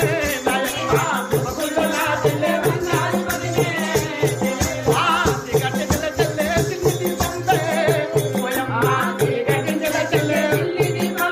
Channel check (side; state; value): both; identical; correlation 1.00